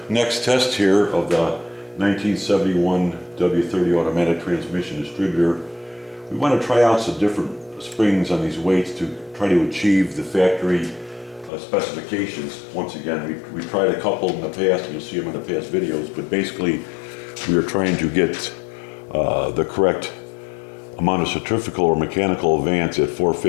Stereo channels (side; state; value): right; drops out; at 11.5 s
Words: next test here of the 1971 W30 automatic transmission distributor. We want to try out some different springs on these weights to try to achieve the factory specifications. Once again, we tried a couple in the past, and you'll see them in the past videos, but basically we are trying to get the correct amount of centrifugal or mechanical advance at